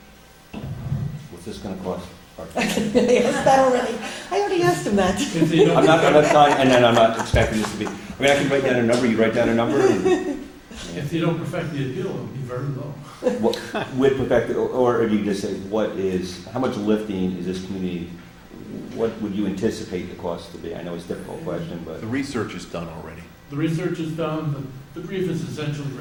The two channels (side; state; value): both; identical; correlation 1.00